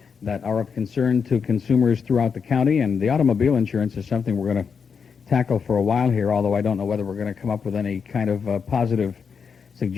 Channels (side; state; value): right; quieter; 6.2 dB